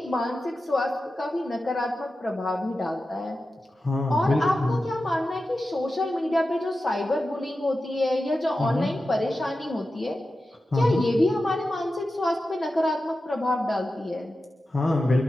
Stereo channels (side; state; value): both; normal; correlation 0.92